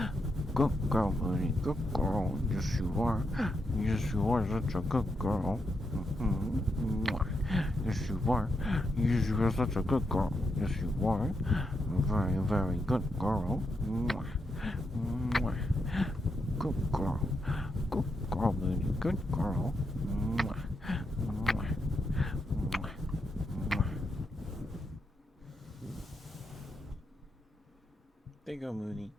Good girl, Mooney. Good girl. Yes, you are. Yes, you are such a good girl. Yes, you are. Yes, you are such a good girl. Yes, you are. Very, very good girl. Good girl. Good girl, Mooney. Good girl. There you go, Mooney.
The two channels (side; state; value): both; normal; correlation 0.83